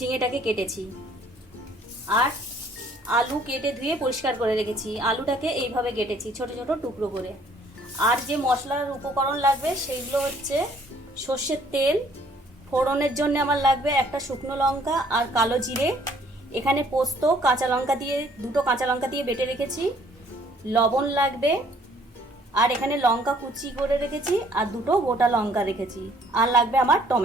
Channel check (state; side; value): normal; both; correlation 0.61